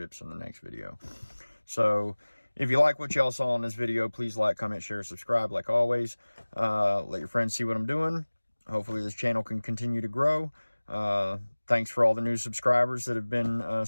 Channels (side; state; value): both; inverted; correlation -1.00